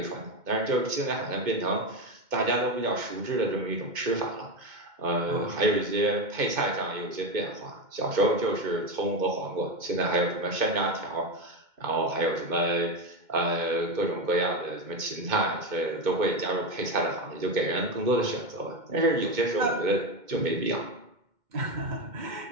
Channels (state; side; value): late; left; 2.2 ms